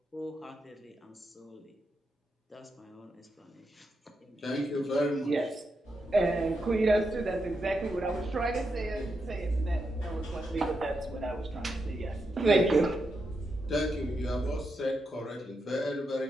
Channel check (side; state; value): both; normal; correlation 0.84